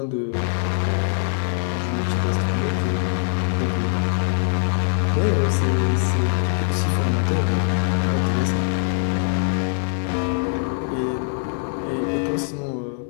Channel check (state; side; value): silent; right; digital silence